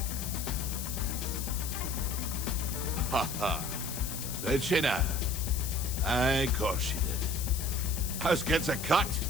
Ha ha. Did she now? Aye, of course she did. House gets a cut.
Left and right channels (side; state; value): left; noise; hiss, 7 dB below the sound